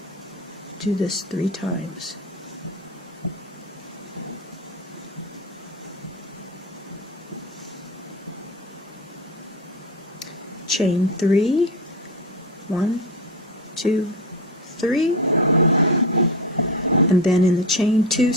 Do this 3 times. Chain 3, 1, 2, 3, and then in the chain 2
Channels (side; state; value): both; normal; correlation 0.21